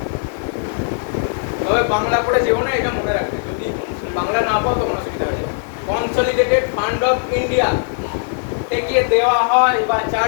তবে বাংলা করে যেও না, এটা মনে রাখবে। যদি বাংলা না পাও তখন অসুবিধা হয়ে যাবে। কনসলিডেটেড ফান্ড অফ ইন্ডিয়া থেকে দেওয়া হয় বা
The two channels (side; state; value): right; silent; digital silence